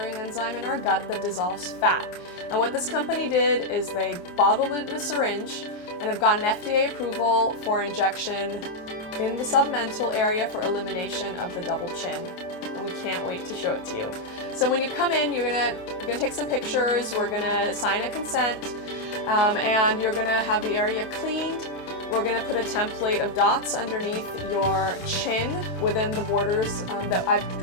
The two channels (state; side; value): late; right; 27 ms